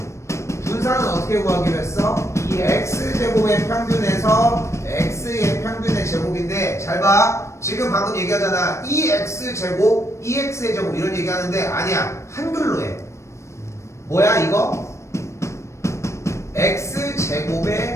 분산은 어떻게 구하기로 했어? 이 x제곱의 평균에서 x의 평균의 제곱인데 잘 봐. 지금 방금 얘기하잖아. 2x제곱, 2x의 제곱 이런 얘기하는데 아니야. 한글로 해. 뭐야 이거?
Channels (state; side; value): late; right; 0.14 ms